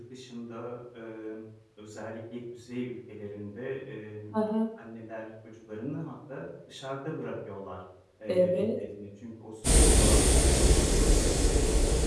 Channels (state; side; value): identical; both; correlation 1.00